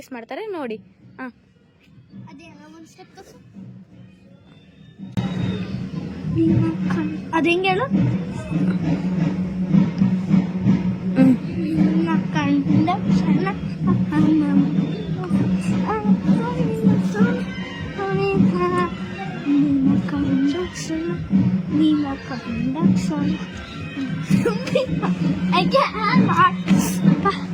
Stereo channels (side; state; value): both; identical; correlation 1.00